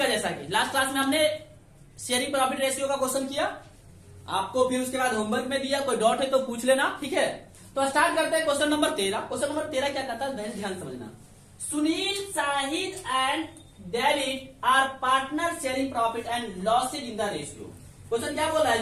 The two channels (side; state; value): both; identical; correlation 1.00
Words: जैसा कि लास्ट क्लास में हमने शेयरिंग प्रॉफिट रेशियो का क्वेश्चन किया आपको, फिर उसके बाद होमवर्क में दिया, कोई डाउट है तो पूछ लेना, ठीक है। तो स्टार्ट करते हैं क्वेश्चन नंबर 13। क्वेश्चन नंबर 13 क्या कहता है, ध्यान समझना। Sunil, Shahid and David are partner sharing profit and losses in the ratio. Question क्या बोल रहा है